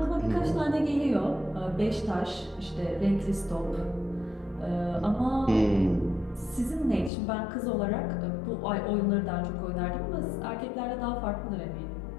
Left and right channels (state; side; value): drops out; right; at 7.1 s